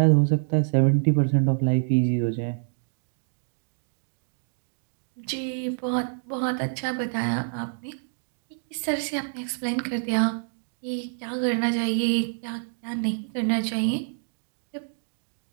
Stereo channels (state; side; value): silent; left; digital silence